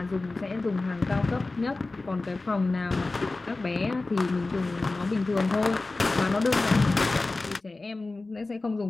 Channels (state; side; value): quieter; right; 3.3 dB